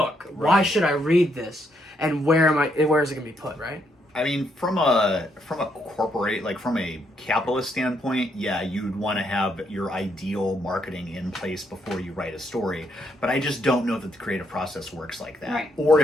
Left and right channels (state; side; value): normal; both; correlation 0.75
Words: Right. Why should I read this? And where is it going to be put, right? I mean, from a corporate, from a capitalist standpoint, yeah, you'd want to have your ideal marketing in place before you write a story. But I just don't know that the creative process works like that. Right. Or